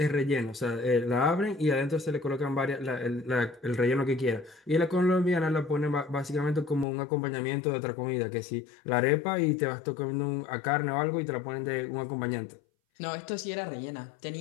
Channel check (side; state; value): right; drops out; at 6.9 s